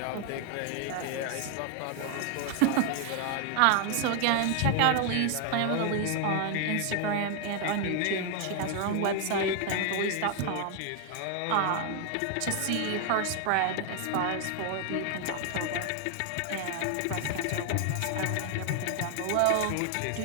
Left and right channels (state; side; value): different; both; correlation 0.00